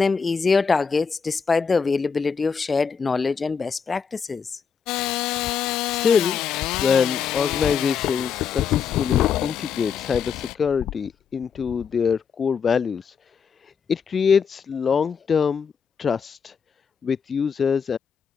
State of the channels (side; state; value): right; quieter; 6.4 dB